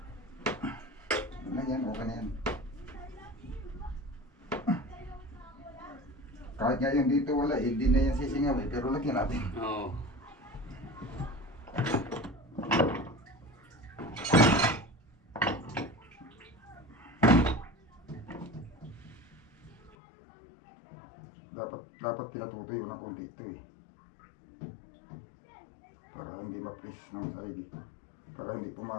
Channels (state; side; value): drops out; right; at 20.0 s